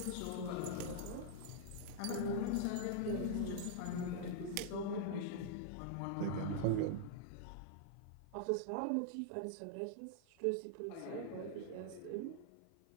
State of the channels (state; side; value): different; both; correlation -0.01